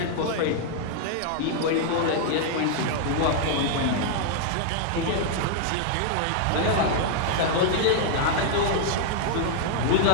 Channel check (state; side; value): different; both; correlation -0.01